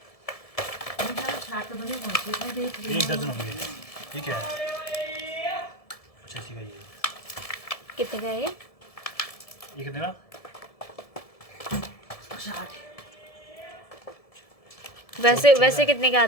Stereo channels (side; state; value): right; late; 1.7 ms